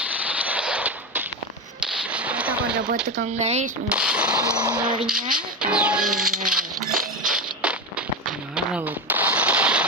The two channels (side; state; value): both; normal; correlation 0.17